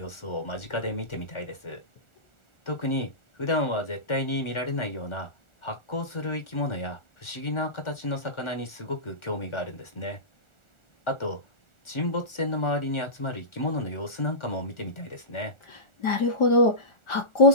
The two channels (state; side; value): late; right; 1.4 ms